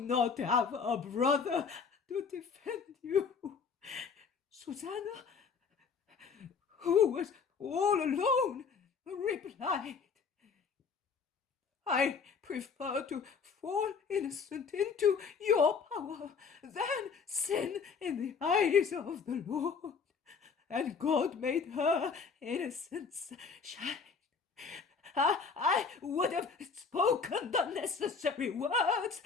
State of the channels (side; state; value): right; quieter; 5.6 dB